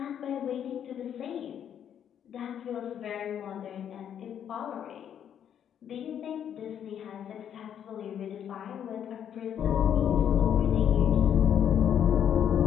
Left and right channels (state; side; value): quieter; right; 9.2 dB